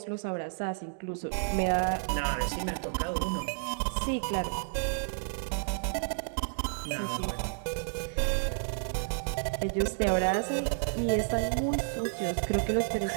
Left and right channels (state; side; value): silent; left; digital silence